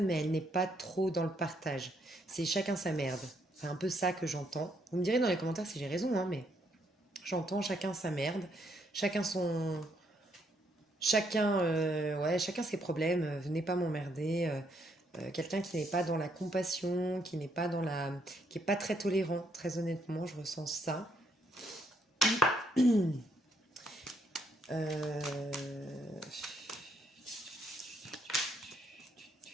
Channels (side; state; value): both; normal; correlation 0.73